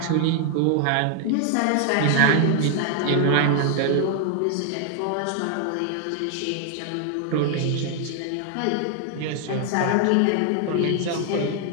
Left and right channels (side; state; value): both; different; correlation 0.00